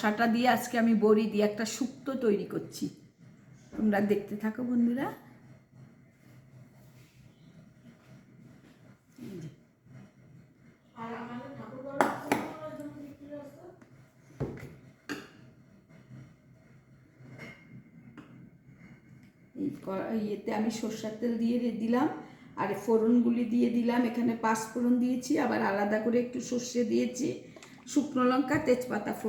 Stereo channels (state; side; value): identical; both; correlation 1.00